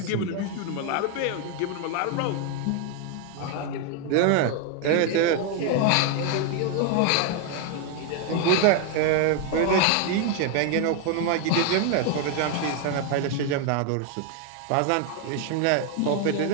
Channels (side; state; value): both; different; correlation 0.01